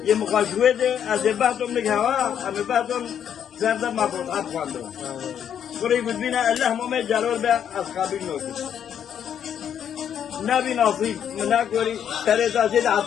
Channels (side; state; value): right; quieter; 9.0 dB